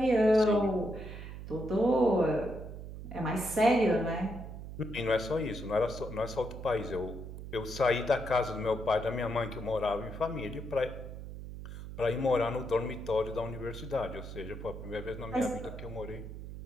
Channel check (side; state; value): right; noise; hum, 10 dB below the sound